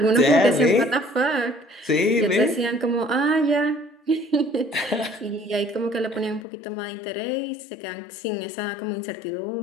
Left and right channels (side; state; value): right; drops out; at 6.5 s